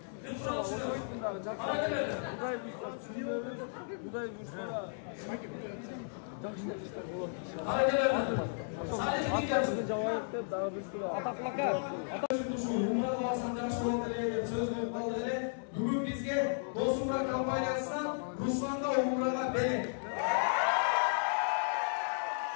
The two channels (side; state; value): right; silent; digital silence